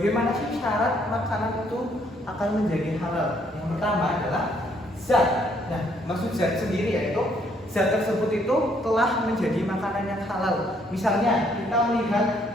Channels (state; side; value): normal; both; correlation 0.68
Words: sih syarat makanan itu akan menjadi halal? Yang pertama adalah zat. Nah, maksud zat sendiri yaitu zat tersebut itu telah menjadi makanan yang halal. Misalnya kita melihat